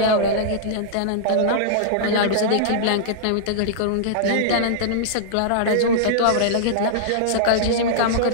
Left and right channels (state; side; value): different; both; correlation -0.02